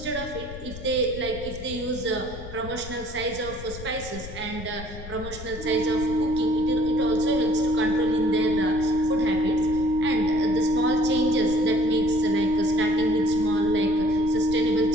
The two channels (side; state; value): left; noise; rumble, 12 dB below the sound